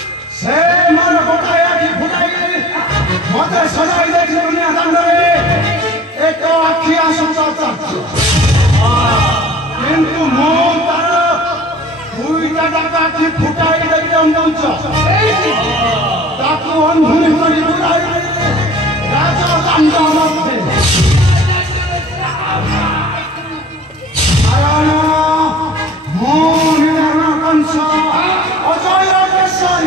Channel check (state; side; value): normal; both; correlation 0.44